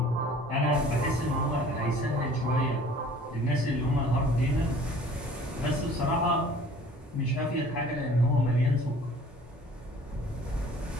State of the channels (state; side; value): normal; both; correlation 0.50